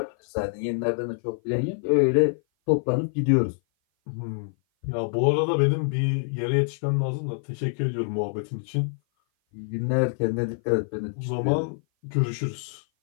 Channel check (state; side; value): silent; right; 56 dB below the other